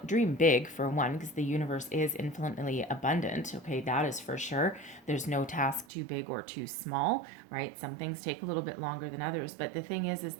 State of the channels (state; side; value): drops out; left; at 5.9 s